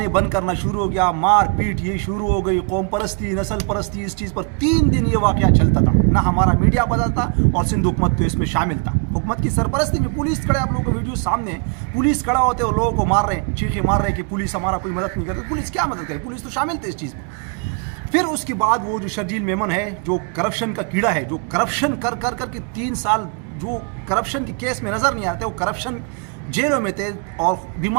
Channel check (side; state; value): left; quieter; 37.0 dB